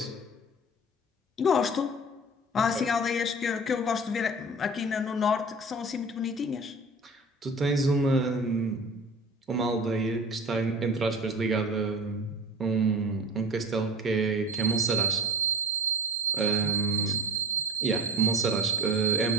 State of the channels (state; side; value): normal; both; correlation 0.37